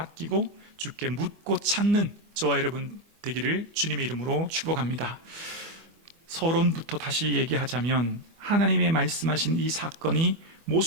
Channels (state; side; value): late; left; 25 ms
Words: 주께 묻고 찾는 저와 여러분 되기를 주님의 이름으로 축복합니다. 서론부터 다시 얘기하자면 하나님의 말씀하신 이 사건이